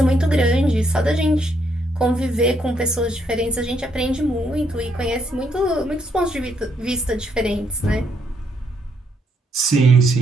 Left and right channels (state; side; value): normal; both; correlation 0.74